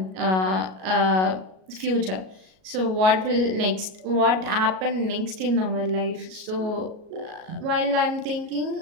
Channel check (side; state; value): left; late; 37 ms